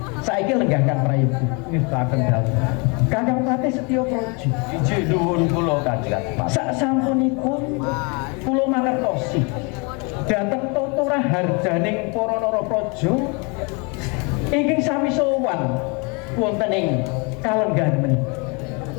Saiki lenggah Kang Prayogi nistaken dawuh. Kakang Patih Setya Praja. Iji nuwun kula Kanjeng Adipati. Sak sampunipun kula mangertosi dhateng tuturah harjaning para Narapraja ingkang sami sowan wonten ing kalenggan menika.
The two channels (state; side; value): quieter; right; 31.6 dB